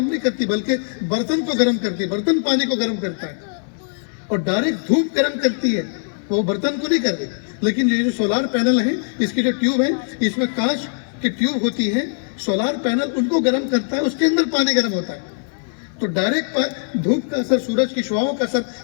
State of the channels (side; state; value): right; silent; 64 dB below the other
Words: نہیں کرتی بلکہ برتن کو گرم کرتی ہے، برتن پانی کو گرم کرتا ہے، اور ڈائریکٹ دھوپ گرم کرتی ہے، وہ برتن کو نہیں کرتی. لیکن یہ جو سولار پینل ہیں، اس کی جو ٹیوب ہے، اس میں کانچ کی ٹیوب ہوتی ہے، سولار پینل ان کو گرم کرتا ہے، اس کے اندر پانی گرم ہوتا ہے. تو ڈائریکٹ دھوپ کا اثر، سورج کی شعاؤں کا اثر